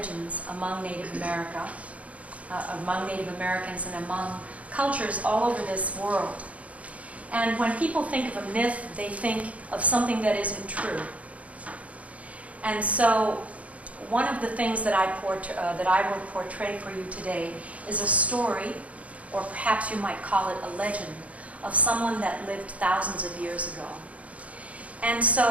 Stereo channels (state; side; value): late; left; 0.066 ms